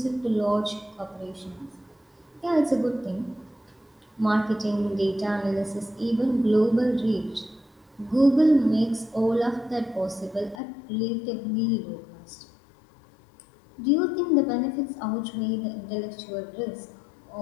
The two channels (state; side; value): drops out; right; at 10.6 s